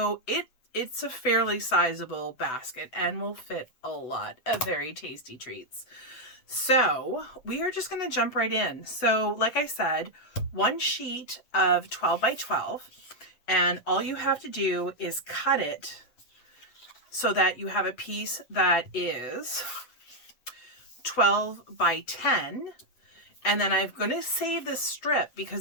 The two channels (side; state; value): right; late; 7.9 ms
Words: it's a fairly sizable basket and will fit a lot of very tasty treats. So we are just going to jump right in. So like I said, one sheet of 12 by 12. And all you have to do is cut it so that you have a piece that is 12 by 10. And then I'm going to save this strip